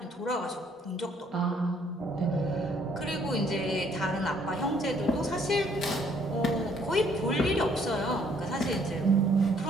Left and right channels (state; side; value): normal; both; correlation 0.65